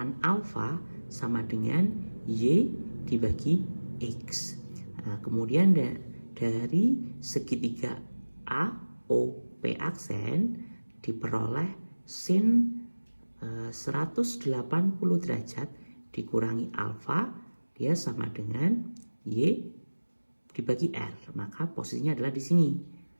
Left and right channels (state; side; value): inverted; both; correlation -1.00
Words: alfa sama dengan Y dibagi X. Kemudian dari segitiga AOP aksen diperoleh sin 180 derajat dikurangi alfa dia sama dengan Y dibagi R, maka posisinya adalah di sini.